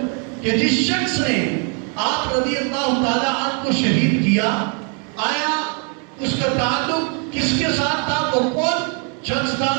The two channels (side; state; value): left; quieter; 38.1 dB